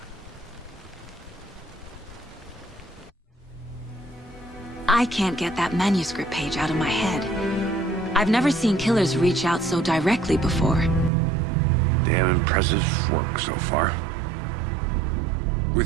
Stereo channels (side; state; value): left; drops out; at 11.1 s